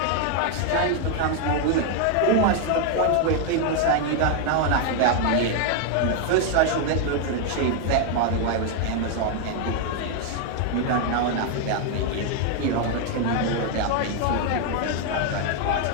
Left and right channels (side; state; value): both; different; correlation 0.00